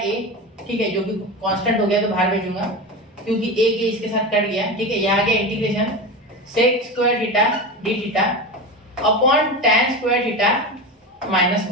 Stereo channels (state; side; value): normal; both; correlation 0.23